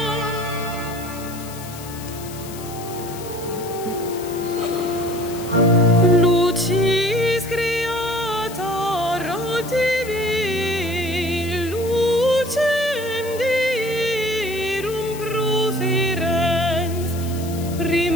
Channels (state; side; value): noise; left; hiss, 15 dB below the sound